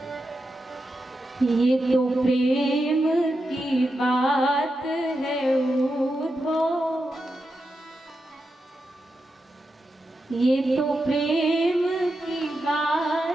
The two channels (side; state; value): both; normal; correlation 0.88